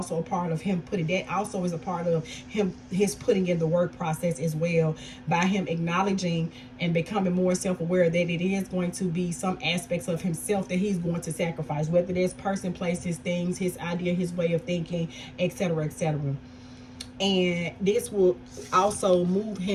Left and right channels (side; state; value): both; identical; correlation 1.00